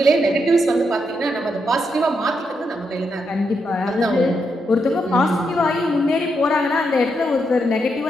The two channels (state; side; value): normal; both; correlation 0.81